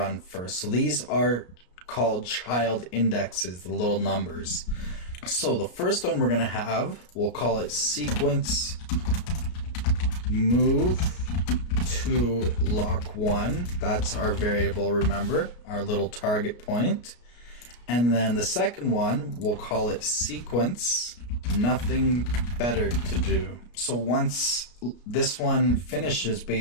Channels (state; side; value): late; right; 33 ms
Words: first. So these are called child indexes, the little numbers. So the first one we're going to have, we'll call it sequence move to lock 1. That's our variable, remember, our little target point. And then the second one, we'll call it sequence nothing better to do. So once this one finishes,